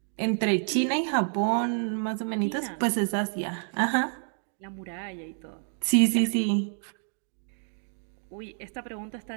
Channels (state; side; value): silent; left; 58 dB below the other